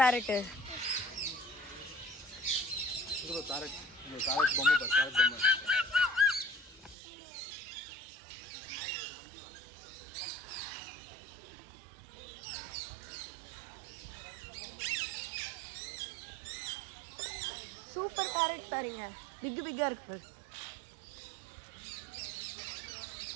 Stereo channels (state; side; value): drops out; left; at 7.0 s